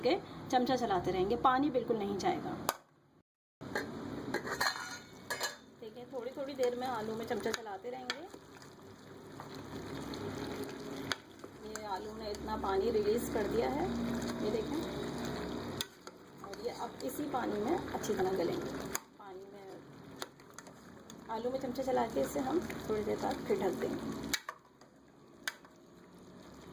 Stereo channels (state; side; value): identical; both; correlation 1.00